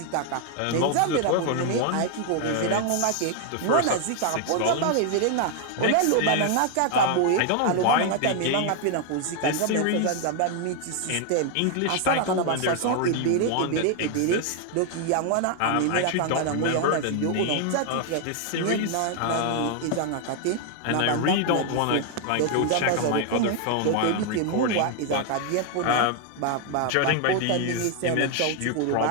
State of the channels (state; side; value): different; both; correlation 0.00